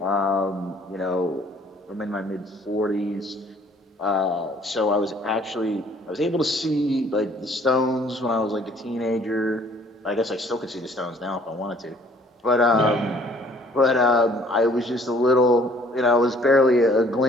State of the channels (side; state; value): both; normal; correlation 0.58